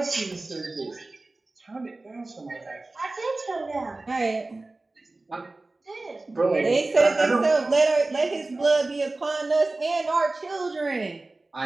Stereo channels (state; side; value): quieter; left; 3.1 dB